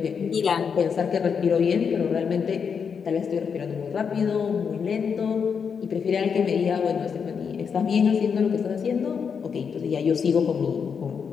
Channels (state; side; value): quieter; right; 6.5 dB